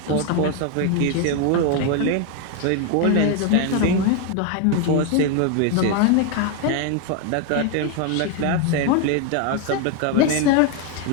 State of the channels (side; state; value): both; different; correlation 0.01